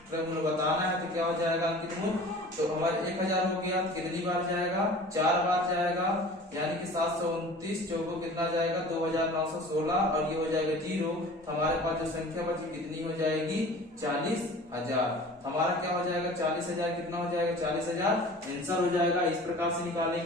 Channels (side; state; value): both; normal; correlation 0.43